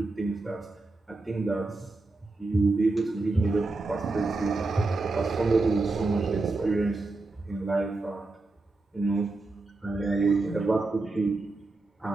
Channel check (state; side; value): quieter; left; 3.3 dB